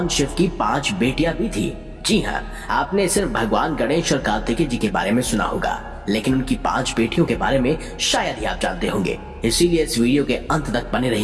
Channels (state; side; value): identical; both; correlation 1.00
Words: शिव की 5 बेटियां भी थी? जी हाँ, आपने सिर्फ भगवान गणेश और कार्तिकेय जी के बारे में सुना होगा, लेकिन उनकी 5 बेटियों के बारे में शायद ही आप जानते होंगे। इसीलिए इस वीडियो के अंत तक बने